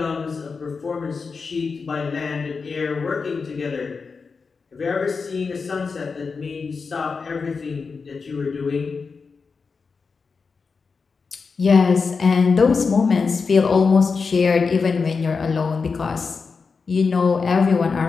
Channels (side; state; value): right; quieter; 4.9 dB